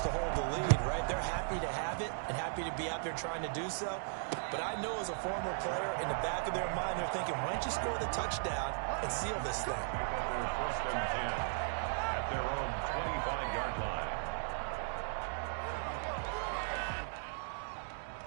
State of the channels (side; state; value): left; silent; digital silence